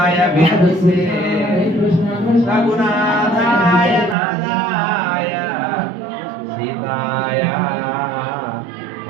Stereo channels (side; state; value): left; drops out; at 4.2 s